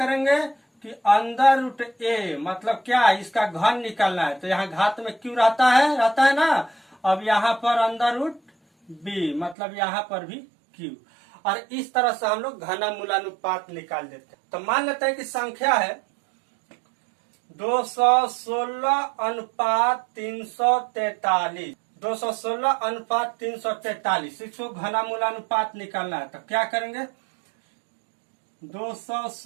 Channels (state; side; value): drops out; left; at 9.6 s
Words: कि अंडर रूट ए, मतलब क्या, इसका घन निकालना है। तो यहाँ घात में क्यों रहता है ना। अब यहाँ पर अंडर रूट बी, मतलब यहाँ पर भी क्यू। और इस तरह से हम लोग घनमूलानुपात निकाल देते हैं। तो मान लेते हैं कि संख्या है 216 अनुपात 343, 216 अनुपात 343, इसको घनमूलानुपात निकालना है। तो क्या करेंगे,